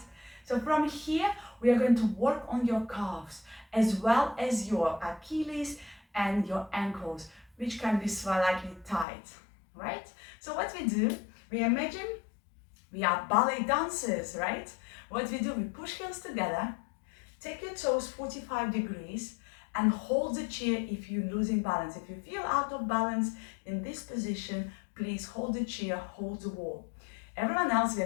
So from here, we are going to work on your calves, as well as your Achilles and your ankles, which can be slightly tight, right? So what we do, we imagine we are ballet dancers, right? What we do, we push heels together, take your toes 45 degrees, and hold the chair if you're losing balance. If you feel out of balance in this position, please hold the chair, hold the wall. Everyone else, we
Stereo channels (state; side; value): drops out; right; at 9.1 s